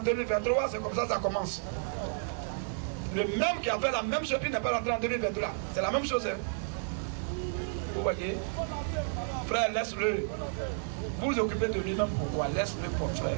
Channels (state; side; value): silent; left; digital silence